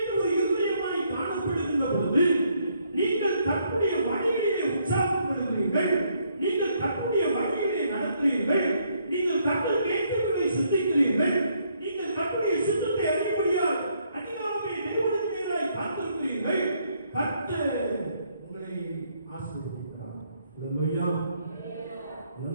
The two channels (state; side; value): inverted; both; correlation -0.71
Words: ஒரு இருதயமாய் காணப்படுகின்ற பொழுது நீங்கள் கர்த்தருடைய வழியிலே உற்சாகப்படுகிறீர்கள், நீங்கள் கர்த்தருடைய வழியிலே நடக்கிறீர்கள், நீங்கள் கர்த்தருக்கு ஏற்றவர்களை சிந்திக்கிறீர்கள், நீங்கள் கர்த்தருடைய சித்தத்தை அறியும்படியால் அதிகாரமே நிறுவனத்தினராய் காத்திருக்கிறீர்கள். கர்த்தர் உங்களை ஆசீர்வதிக்கிறார். அல்லேலூயா.